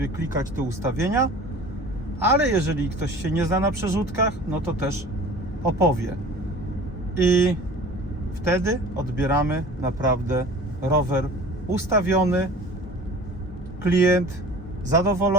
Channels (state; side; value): normal; both; correlation 0.42